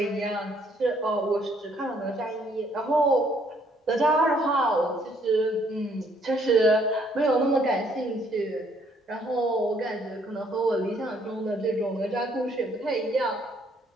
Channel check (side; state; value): both; normal; correlation 0.66